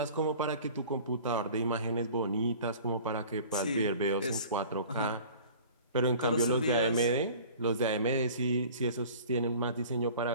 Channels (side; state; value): both; inverted; correlation -0.45